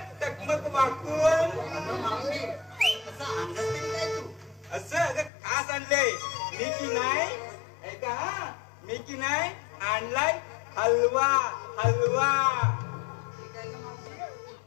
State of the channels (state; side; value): drops out; right; at 5.3 s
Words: टकमक वाकून. अगं मावशी असं अंदाज तरी काय तू? असं अगं खास आणलंय मी की नाही. ऐका हा. मी की नाही आणलाय हलवा. हलवा ठीक आहे का मावशी?